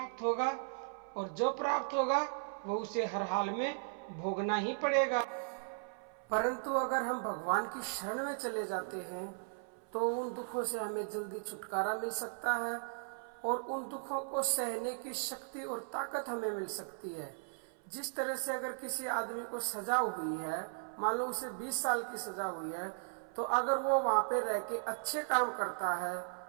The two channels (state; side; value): silent; left; 53 dB below the other